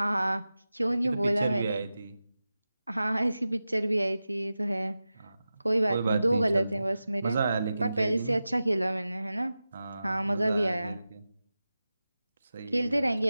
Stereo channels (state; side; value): inverted; both; correlation -0.94